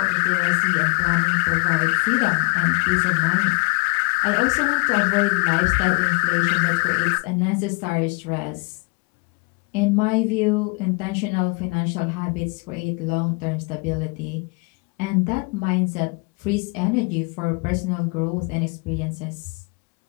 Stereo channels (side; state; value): right; quieter; 32.1 dB